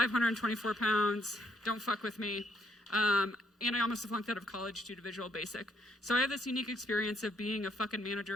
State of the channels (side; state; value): both; normal; correlation 0.71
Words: pounds. Don't fuck with me. And I almost flunked out of college due to Visual Basic. So I have this unique experience of being a fucking